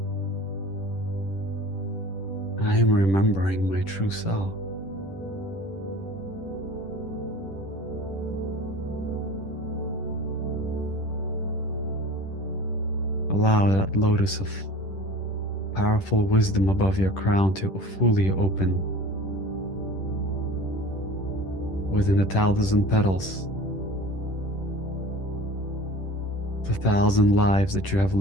I am remembering my true self. Allow that lotus of powerful wisdom above your crown to fully open within the 1,000 petals, the 1,000 lives that you have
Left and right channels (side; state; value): right; late; 10 ms